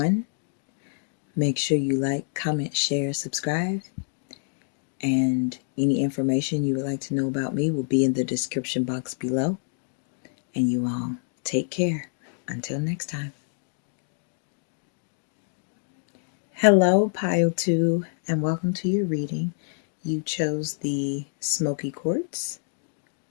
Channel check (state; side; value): silent; right; digital silence